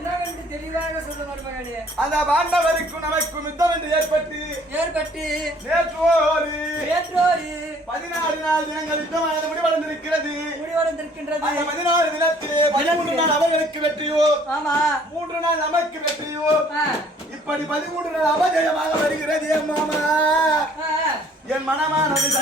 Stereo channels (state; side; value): normal; both; correlation 0.57